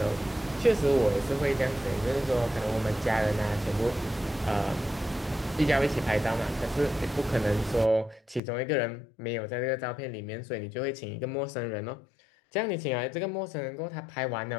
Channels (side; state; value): right; drops out; at 8.4 s